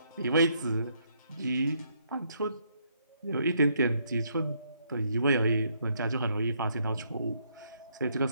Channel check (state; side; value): inverted; both; correlation -0.72